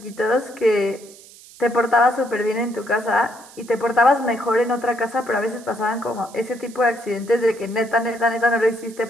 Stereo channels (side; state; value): right; noise; hiss, 21 dB below the sound